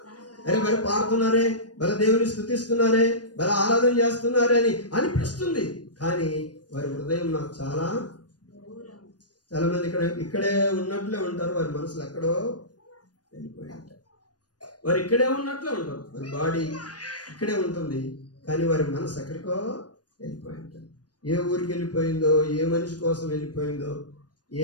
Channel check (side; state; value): right; late; 0.69 ms